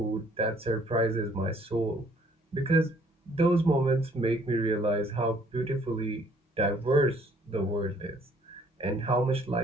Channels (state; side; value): normal; both; correlation 0.62